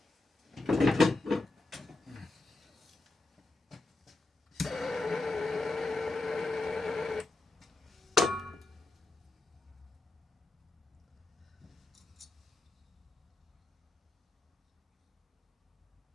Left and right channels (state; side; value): quieter; right; 3.2 dB